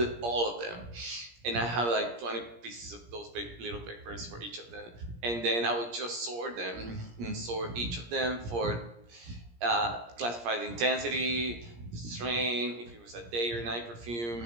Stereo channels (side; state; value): left; late; 17 ms